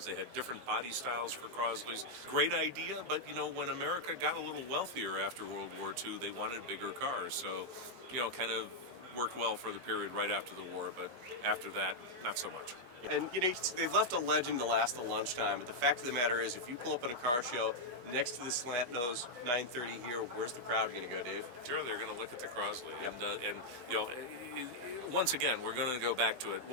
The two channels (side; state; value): left; late; 23 ms